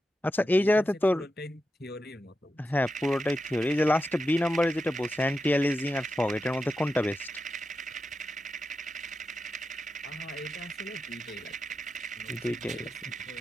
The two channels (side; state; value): both; normal; correlation 0.89